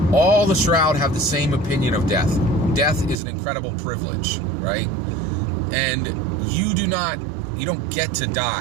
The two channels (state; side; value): drops out; left; at 3.2 s